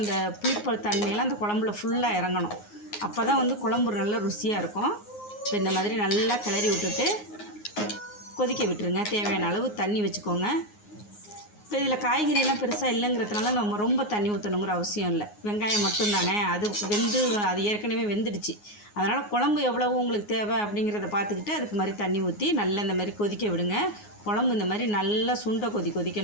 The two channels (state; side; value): late; right; 9.6 ms